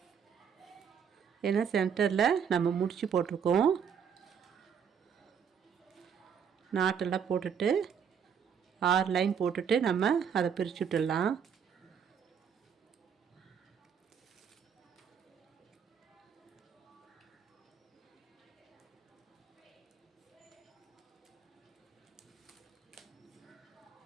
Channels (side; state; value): left; quieter; 7.4 dB